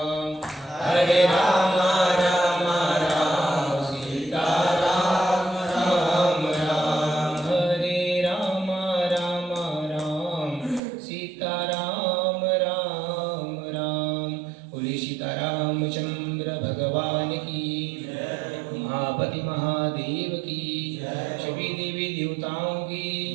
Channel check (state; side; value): drops out; left; at 10.8 s